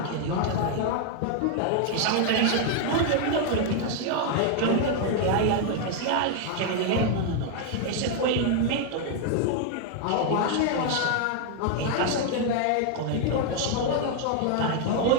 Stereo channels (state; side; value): different; both; correlation 0.00